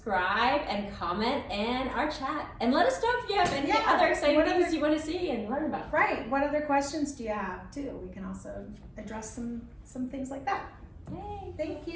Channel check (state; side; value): identical; both; correlation 1.00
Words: and comment in our chat. And let us know if you have any other exciting things you want to see and learn about. Right. What other questions do you have, too? We can also address some things like that. Yay. Thank